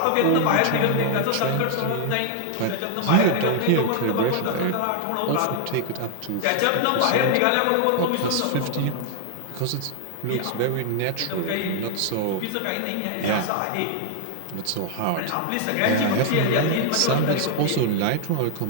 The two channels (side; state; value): both; different; correlation 0.00